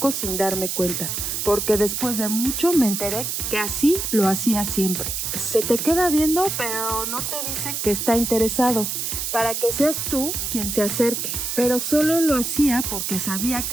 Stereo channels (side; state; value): right; noise; hiss, 2 dB below the sound